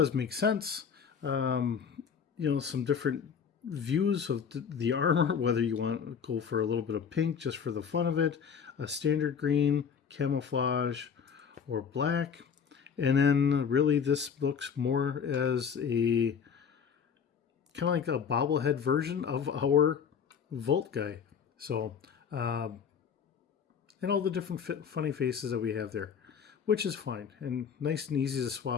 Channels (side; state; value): right; quieter; 7.0 dB